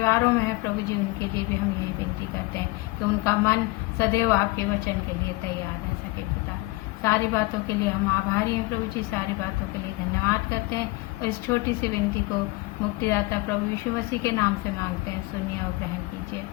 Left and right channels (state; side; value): quieter; right; 22.3 dB